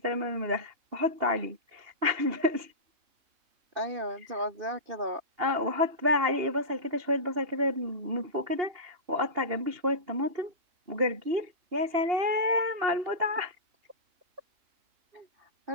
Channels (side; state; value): left; late; 2.8 ms